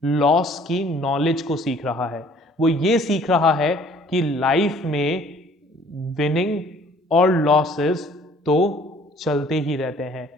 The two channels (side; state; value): both; normal; correlation 0.56